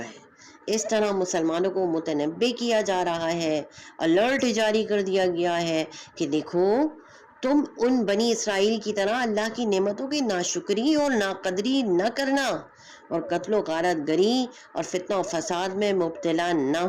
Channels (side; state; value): both; identical; correlation 1.00